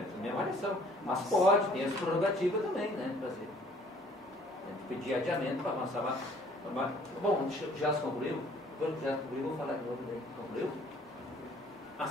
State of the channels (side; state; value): both; normal; correlation 0.57